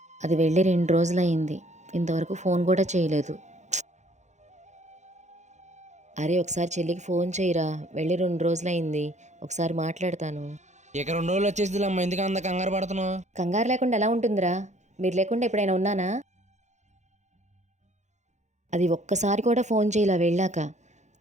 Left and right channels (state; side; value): late; left; 0.34 ms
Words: అది వెళ్ళి 2 రోజులయ్యింది, ఇంతవరకు ఫోన్ కూడా చేయలేదు. అరే ఒకసారి చెల్లికి ఫోన్ చేయరా, వెళ్ళి 2 రోజులయ్యింది, ఒకసారి మాట్లాడతాను. ఇక 2 రోజులు వచ్చేసి అమ్మ, ఎందుకు అంత కంగారు పడుతున్నావు? కంగారు లేకుండా ఎలా ఉంటుందిరా? మీరు లేకుండా ఎప్పుడైనా ఉన్నానా? అది ఒక్కసారి కూడా ఫోన్ చేయలా వెళ్ళాక.